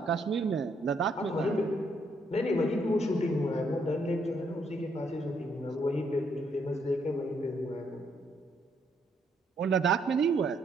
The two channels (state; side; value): normal; both; correlation 0.72